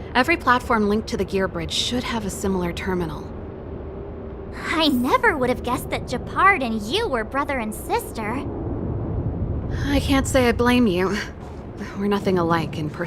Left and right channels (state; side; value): identical; both; correlation 1.00